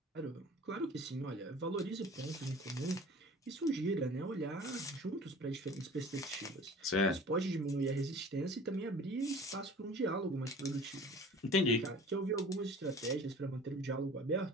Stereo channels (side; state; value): both; normal; correlation 0.44